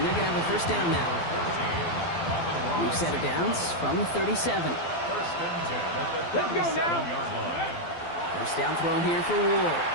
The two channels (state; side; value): late; right; 12 ms